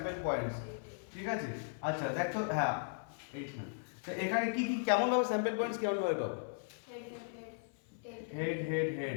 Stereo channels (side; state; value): right; silent; 53 dB below the other